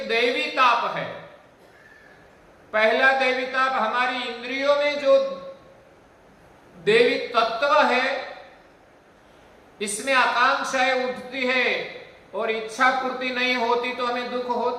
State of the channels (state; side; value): identical; both; correlation 1.00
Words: दैवी ताप है। पहला दैवी ताप हमारी इंद्रियों में जो देवी तत्व है, इसमें आकांक्षाएं उठती है और इच्छा पूर्ति नहीं होती तो हमें दुख